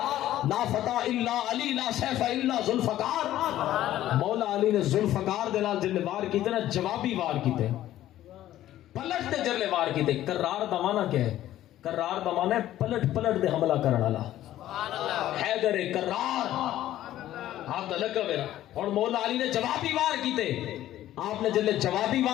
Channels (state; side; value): quieter; right; 13.4 dB